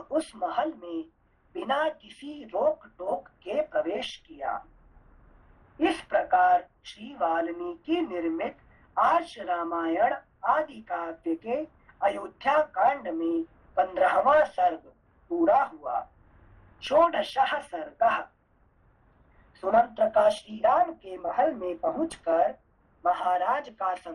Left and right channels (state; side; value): identical; both; correlation 1.00